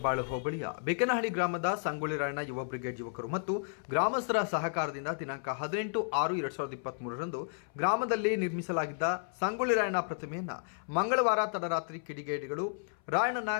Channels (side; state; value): right; silent; 56 dB below the other